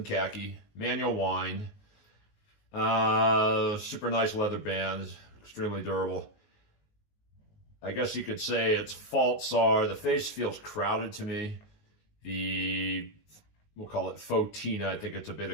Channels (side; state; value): right; late; 19 ms